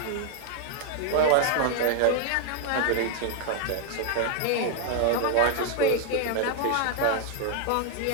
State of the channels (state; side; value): different; both; correlation 0.00